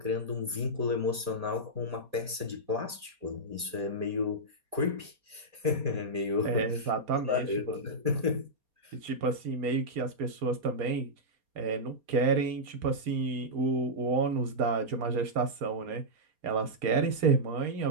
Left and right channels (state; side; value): late; left; 4.2 ms